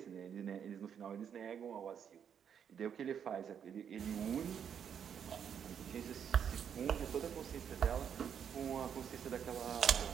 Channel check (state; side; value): quieter; left; 8.1 dB